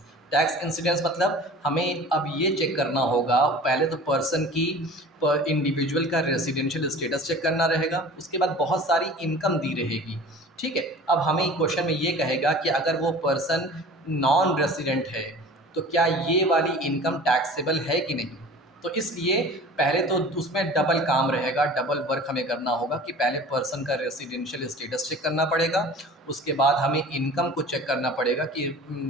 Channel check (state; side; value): normal; both; correlation 0.42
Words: टैक्स इंसिडेंस मतलब हमें अब ये चेक करना होगा, पहले तो पर्सन की, इंडिविजुअल का रेसिडेंशियल स्टेटस चेक करना रहेगा, उसके बाद बहुत सारी इनकम दी रहेगी। ठीक है, अब हमें क्वेश्चन में ये कहेगा कि अगर वो पर्सन नॉन रेसिडेंट है तो क्या ये वाली इनकम टैक्सेबल है कि नहीं। तो इसलिए पहले तो उसमें डबल काम रहेगा, डबल वर्क हमें करना होगा कि पहले पर्सन का रेसिडेंशियल स्टेटस चेक करना पड़ेगा, उसके बाद हमें इनकम को चेक करना पड़ेगा कि